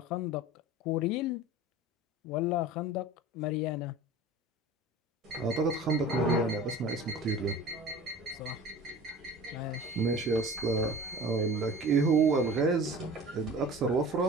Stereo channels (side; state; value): both; normal; correlation 0.39